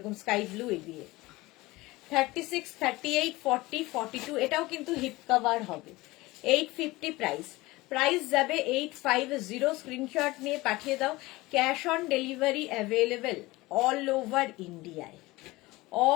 স্কাই ব্লু এই দিয়ে। 36, 38, 40, 42, এটাও কিন্তু হিপ কভার হবে। 850 প্রাইস, প্রাইস যাবে 850। স্ক্রিনশট নিয়ে পাঠিয়ে দাও, cash on delivery available all over ইন্ডিয়ায়,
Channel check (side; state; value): right; quieter; 20.5 dB